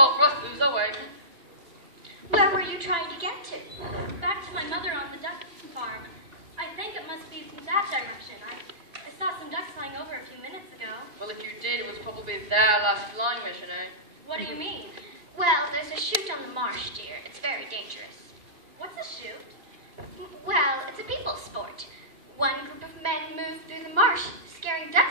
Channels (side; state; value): left; late; 2.5 ms